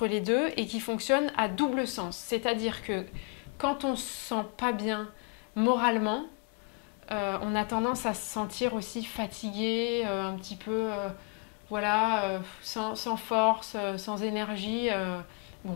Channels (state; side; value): quieter; right; 34.0 dB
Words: les deux et qui fonctionne à double sens. C'est-à-dire que quand on ne se sent pas bien moralement, on a tendance à se sentir aussi fatigué, un petit peu, sans force, sans énergie. Bon,